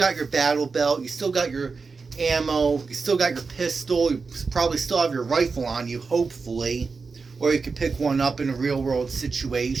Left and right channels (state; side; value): quieter; left; 4.6 dB